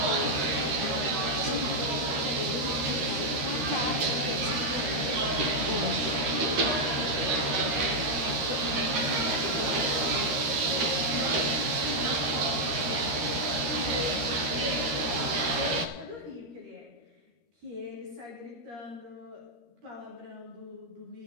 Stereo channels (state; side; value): late; left; 13 ms